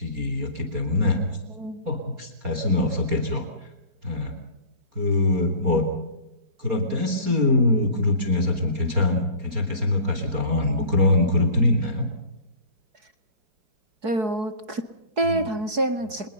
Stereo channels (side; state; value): left; late; 4.7 ms